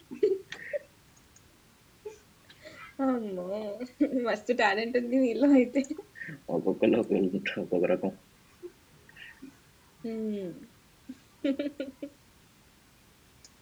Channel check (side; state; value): both; identical; correlation 1.00